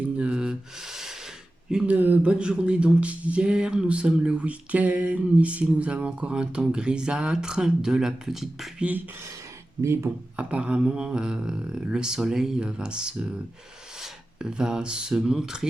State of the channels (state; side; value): normal; both; correlation 0.94